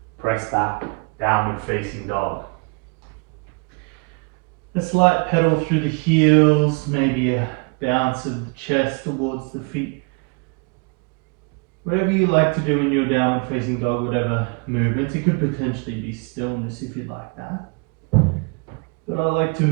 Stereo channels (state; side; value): quieter; left; 34.1 dB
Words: press back, downward facing dog. A slight pedal through the heels, maybe a bounce of the chest towards the feet. Whatever you like to do in your downward facing dog, whatever movements. It could potentially be stillness if you'd like that. But I like to